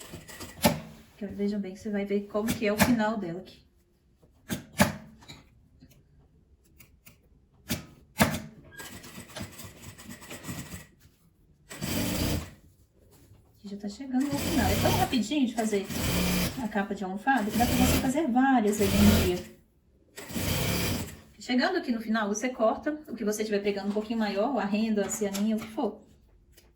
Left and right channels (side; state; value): both; identical; correlation 1.00